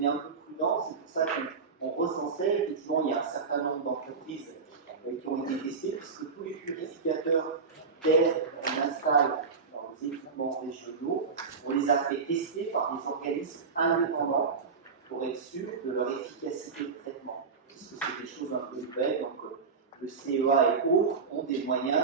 est un peu prudent, c'est pour ça qu'on recensait. Effectivement, il y a un certain nombre d'entreprises qui ont été testées, puisque tous les purificateurs d'air qu'on installe dans les équipements régionaux, on les a fait tester par des organismes indépendants pour être sûr de leur efficacité de traitement. Puisque c'est des choses un peu nouvelles, donc le CEA et autres ont des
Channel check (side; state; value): left; quieter; 5.1 dB